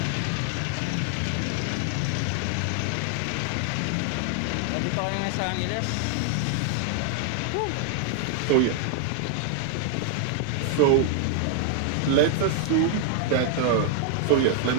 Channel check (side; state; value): both; different; correlation 0.00